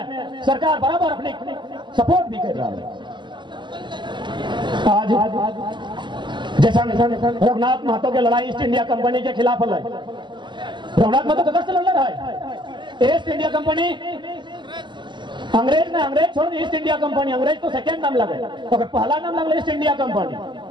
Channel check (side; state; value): left; late; 0.22 ms